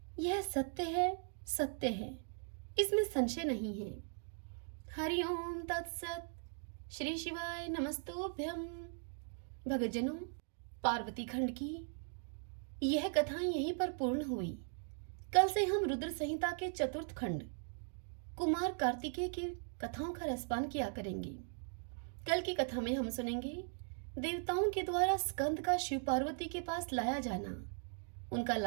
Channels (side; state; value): left; silent; 52 dB below the other